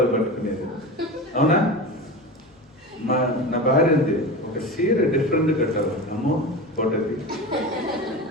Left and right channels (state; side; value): normal; both; correlation 0.27